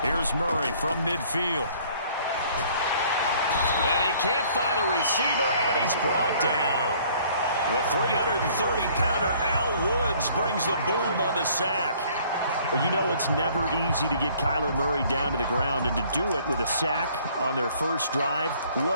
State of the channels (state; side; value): inverted; both; correlation -0.58